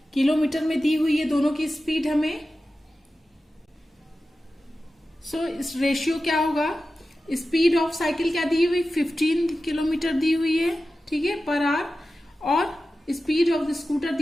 किलोमीटर में दी हुई है दोनों की स्पीड हमें। सो इस रेशियो क्या होगा, स्पीड ऑफ साइकिल क्या दी हुई, 15 किलोमीटर दी हुई है, ठीक है, पर आवर, और स्पीड ऑफ द स्कूटर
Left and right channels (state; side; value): normal; both; correlation 0.94